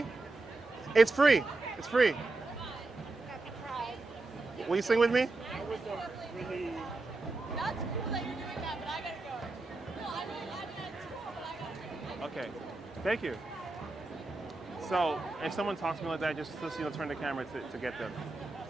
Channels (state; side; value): quieter; left; 3.2 dB